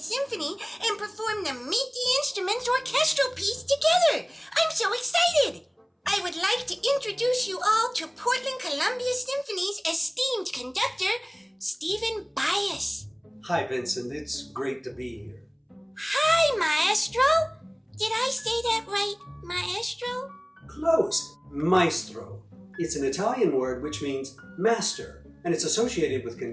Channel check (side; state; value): both; identical; correlation 1.00